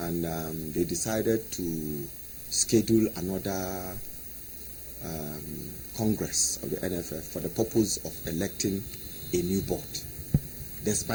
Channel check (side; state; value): both; identical; correlation 1.00